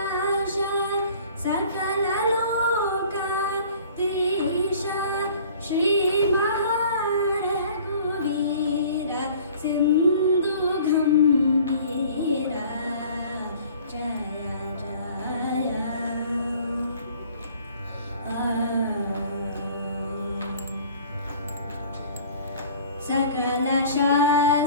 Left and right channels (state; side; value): inverted; both; correlation -0.49